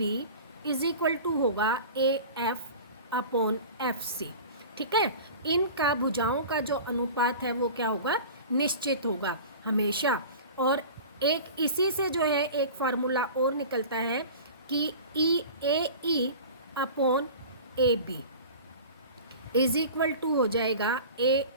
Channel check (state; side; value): inverted; both; correlation -0.37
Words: is equal to होगा AF अपॉन FC, ठीक है। इनका भुजाओं का जो अनुपात है वो क्या होगा, निश्चित होगा हमेशा। और एक इसी से जो है एक फार्मूला और निकलता है कि AE upon AB is equal to हो जाएगा